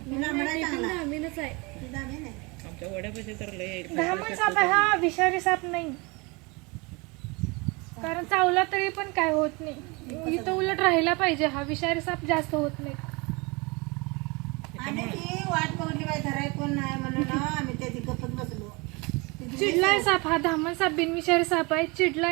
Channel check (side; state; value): left; quieter; 27.5 dB